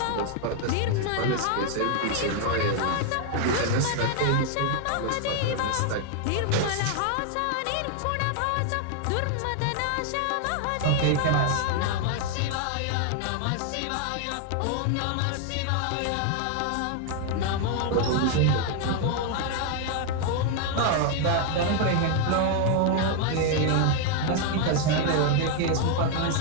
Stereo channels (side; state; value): both; different; correlation 0.00